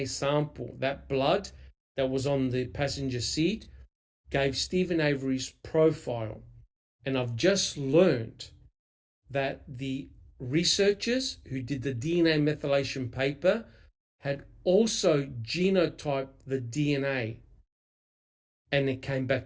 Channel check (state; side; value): identical; both; correlation 1.00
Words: sample, that blood that was on the passenger seat, gave Stephen Avery's profile. And I've just learned that the researchers who did the DNA methylation paper had also genotyped the DNA, and it came